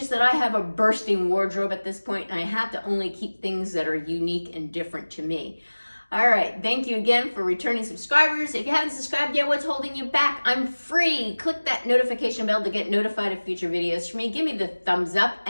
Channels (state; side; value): inverted; both; correlation -1.00